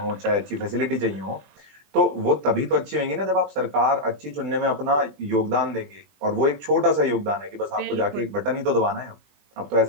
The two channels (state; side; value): late; left; 20 ms